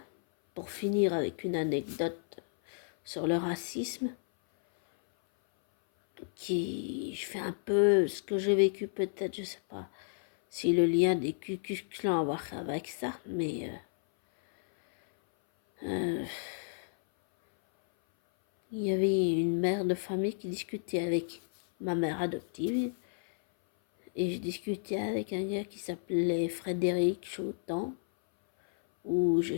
pour finir avec une anecdote sur le racisme, je fais un peu ce que j'ai vécu peut-être, je sais pas si le lien des Ku Klux Klan a à voir avec ça, mais il y avait une mère de famille qui discutait avec ma mère adoptive et je discutais avec un gars qui s'appelait Frédéric Chautan ou je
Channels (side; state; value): right; silent; 57 dB below the other